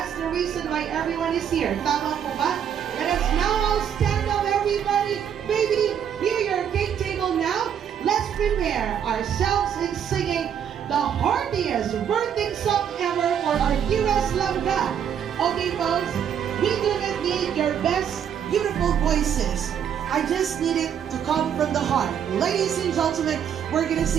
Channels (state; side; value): quieter; left; 8.6 dB